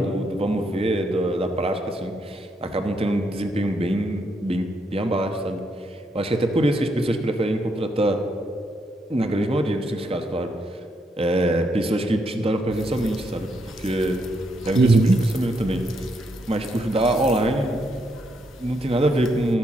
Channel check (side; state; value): both; normal; correlation 0.77